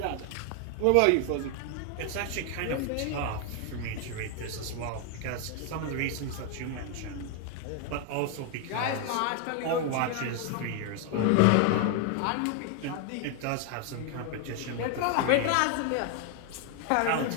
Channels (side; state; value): both; different; correlation 0.00